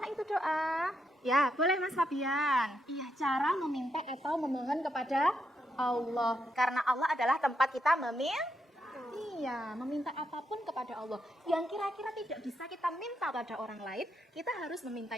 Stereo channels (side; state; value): both; normal; correlation 0.81